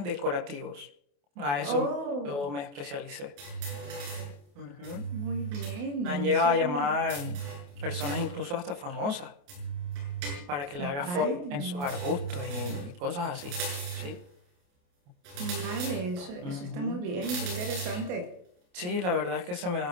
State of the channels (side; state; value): left; late; 28 ms